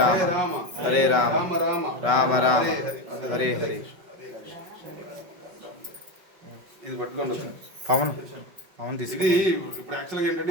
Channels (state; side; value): late; left; 5.4 ms